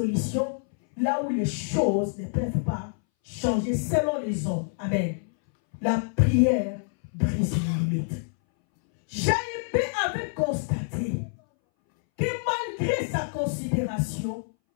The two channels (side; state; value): right; silent; 60 dB below the other